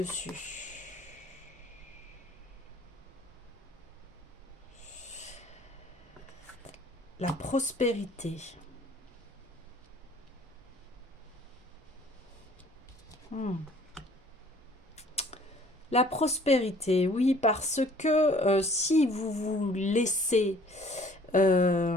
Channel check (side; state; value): both; normal; correlation 0.55